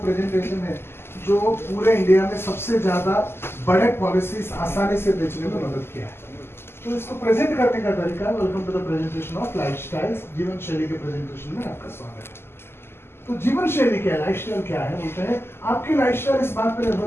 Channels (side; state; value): right; late; 0.12 ms